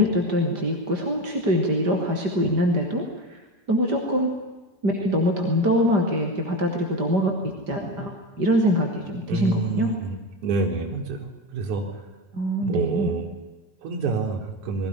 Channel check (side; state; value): left; late; 5.1 ms